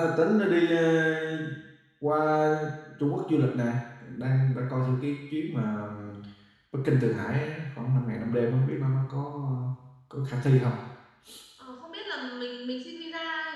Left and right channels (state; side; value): identical; both; correlation 1.00